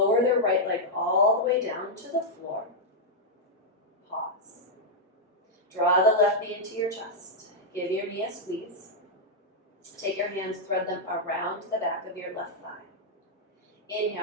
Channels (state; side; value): normal; both; correlation -0.04